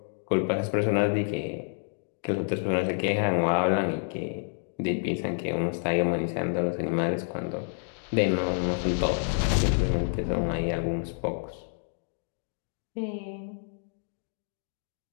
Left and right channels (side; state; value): right; silent; digital silence